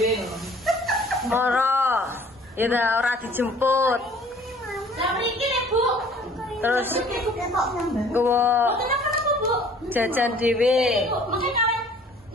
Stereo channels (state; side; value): normal; both; correlation 0.54